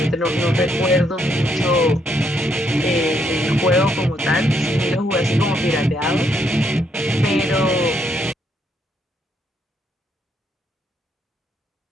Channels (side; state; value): both; normal; correlation 0.74